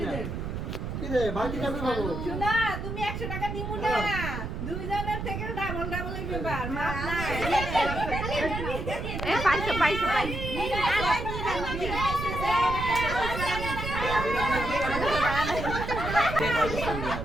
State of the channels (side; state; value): right; noise; rumble, 5 dB below the sound